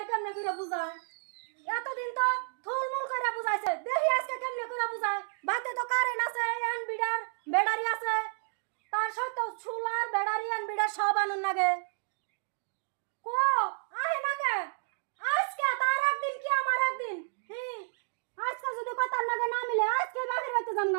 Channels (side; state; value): left; silent; digital silence